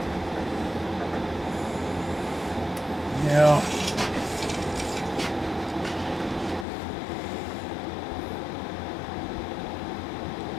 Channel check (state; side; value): drops out; right; at 6.7 s